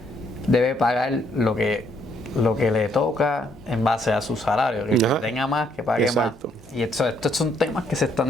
debe pagar lo que le toca en base a su salario, que tenga más, que pague exacto. más. Y estos son temas que se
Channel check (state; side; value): normal; both; correlation 0.70